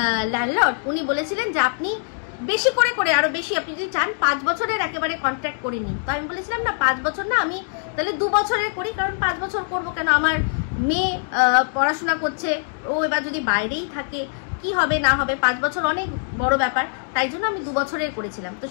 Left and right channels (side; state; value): right; silent; digital silence